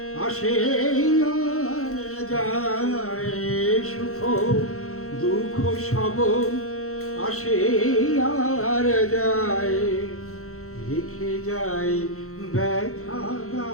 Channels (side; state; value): right; late; 0.64 ms